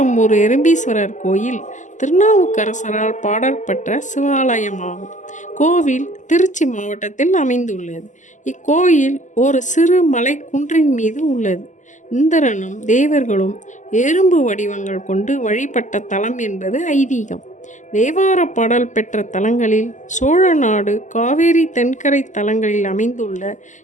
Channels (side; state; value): right; late; 0.36 ms